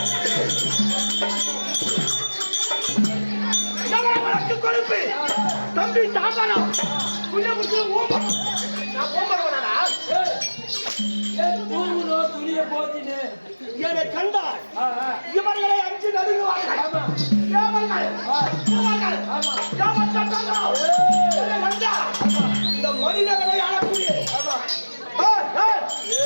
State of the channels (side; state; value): both; inverted; correlation -1.00